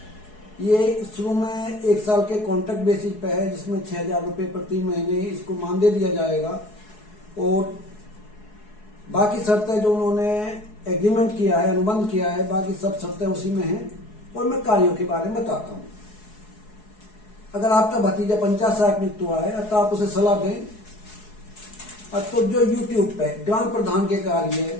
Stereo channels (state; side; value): late; right; 4.7 ms